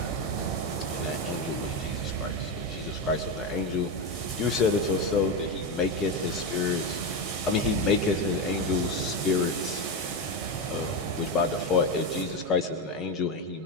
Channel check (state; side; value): normal; both; correlation 0.13